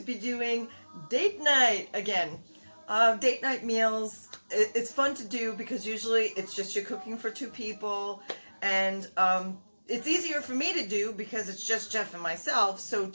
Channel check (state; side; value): inverted; both; correlation -1.00